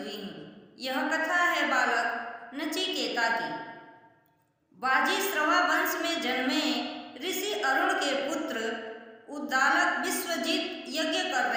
हूँ। यह कथा है बालक नचिकेता की। बाजीश्रवा वंश में जन्मे ऋषि अरुण के पुत्र उद्दालक विश्वजित यज्ञ कर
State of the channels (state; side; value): identical; both; correlation 1.00